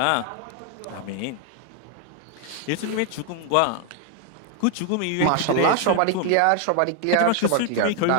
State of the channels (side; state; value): both; different; correlation 0.00